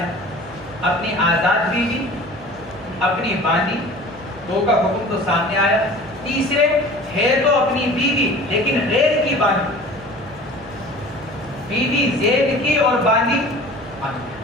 اپنی آزاد بیوی، اپنی باندی، 2 کا حکم تو سامنے آیا۔ تیسرے ہے تو اپنی بیوی لیکن غیر کی باندی، بیوی زید کی اور باندی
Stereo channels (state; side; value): noise; right; hum, 20 dB below the sound